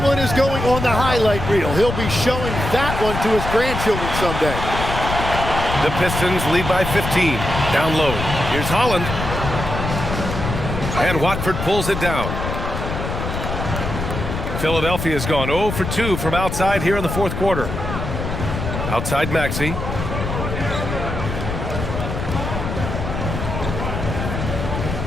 one is going on the highlight reel. He'll be showing that one to his grandchildren someday. The Pistons lead by 15. Down low. Here's Holland. And Watford pulls it down. Philadelphia's gone 0 for 2 from outside here in the fourth quarter. Outside Maxey.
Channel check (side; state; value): left; noise; rumble, 4 dB below the sound